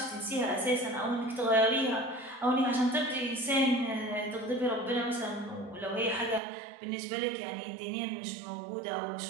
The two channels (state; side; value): drops out; left; at 6.4 s